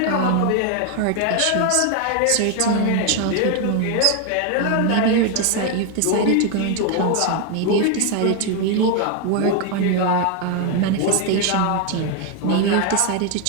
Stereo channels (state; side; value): different; both; correlation 0.01